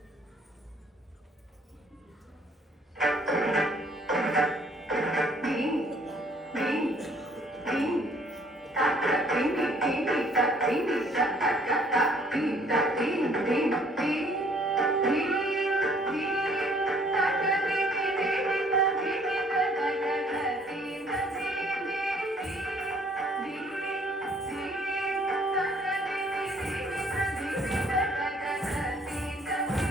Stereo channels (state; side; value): normal; both; correlation 0.61